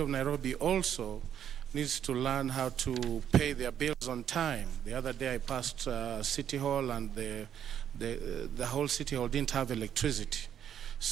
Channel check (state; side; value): quieter; left; 9.4 dB